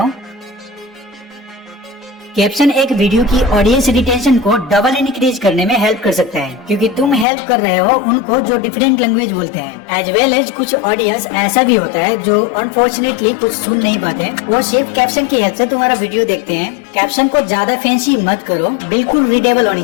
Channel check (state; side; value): drops out; right; at 7.2 s